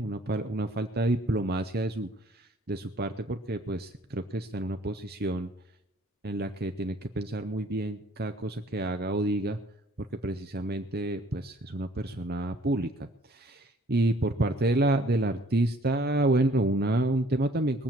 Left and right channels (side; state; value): both; normal; correlation 0.58